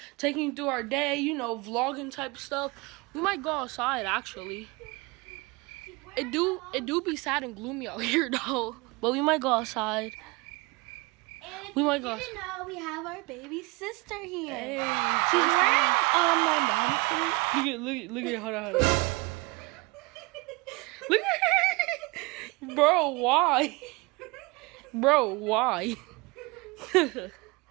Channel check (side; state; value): left; quieter; 24.9 dB